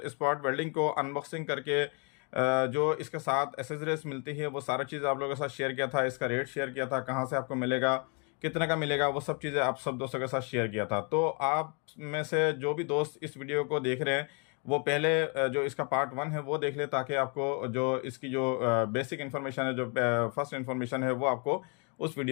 स्पॉट वेल्डिंग को अनबॉक्सिंग करके जो इसके साथ एसेसरीज मिलती है वो सारी चीज़ आप लोगों के साथ शेयर किया था। इसका रेट शेयर किया था, कहां से आपको मिलेगा, कितने का मिलेगा, वो सब चीज़ें आप सब दोस्तों के साथ शेयर किया था। तो आप में से जो भी दोस्त इस वीडियो को देख रहे हैं वो पहले जो इसका पार्ट 1 है वो देख ले, ताकि आपको जो इसकी जो बेसिक इन्फॉर्मेशन है, जो फर्स्ट इन्फॉर्मेशन है, वो आपको उस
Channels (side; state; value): right; quieter; 35.7 dB